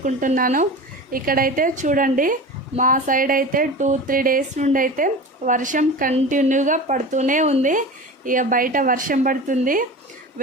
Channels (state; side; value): normal; both; correlation 0.32